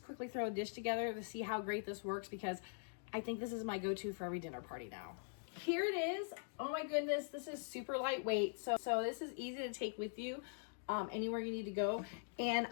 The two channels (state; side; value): silent; right; digital silence